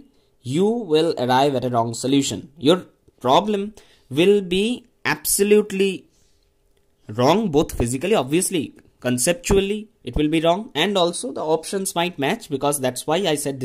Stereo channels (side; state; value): both; identical; correlation 1.00